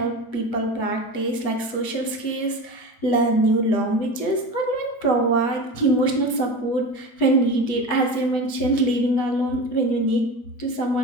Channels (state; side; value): late; right; 8.2 ms